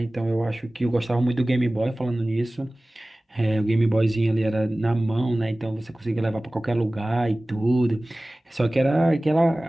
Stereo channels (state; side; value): normal; both; correlation 0.98